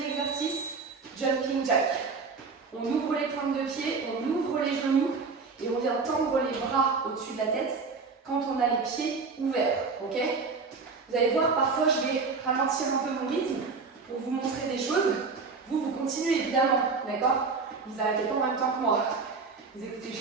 exercice, jumping jack. On ouvre les pointes de pied, on ouvre les genoux et on vient tendre les bras au-dessus de la tête quand on a les pieds ouverts, ok? Vous allez voir, parfois je vais ralentir un peu mon rythme pour vous montrer des choses. Vous continuez évidemment, d'accord? Vous n'arrêtez pas en même temps que moi. Vous écoutez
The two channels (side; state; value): left; quieter; 4.6 dB